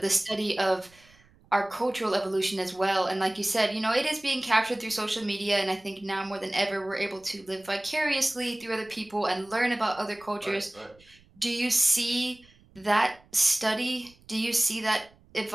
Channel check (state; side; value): noise; right; rumble, 29 dB below the sound